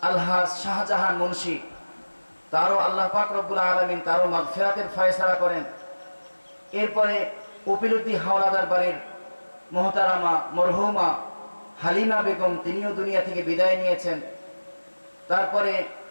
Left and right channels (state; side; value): inverted; both; correlation -1.00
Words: আলহাজ শাহজাহান মুন্সি, তারও আল্লাহ পাক রব্বুল আলামিন তারও মাগফিরাতের ফয়সালা করেন। এরপরে কপিলউদ্দিন হাওলাদার বাড়ির মোহতারামা মরহুমা হালিমা বেগম, তিনিও দুনিয়া থেকে বিদায় নিয়েছেন। তারপরে